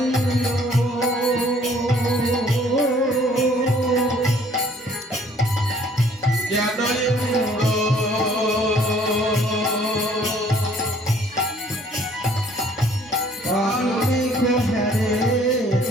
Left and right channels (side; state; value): both; normal; correlation 0.59